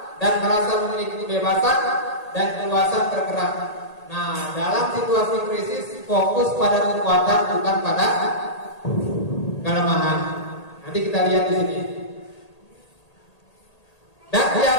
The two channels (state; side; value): late; right; 1.8 ms